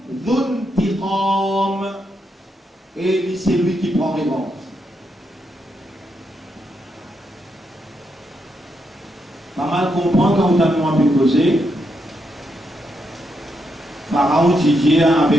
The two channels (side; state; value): both; normal; correlation 0.81